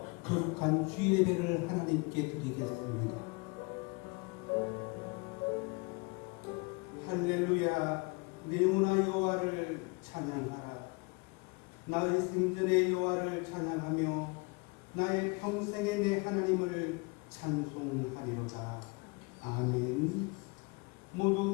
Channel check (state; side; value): quieter; right; 29.4 dB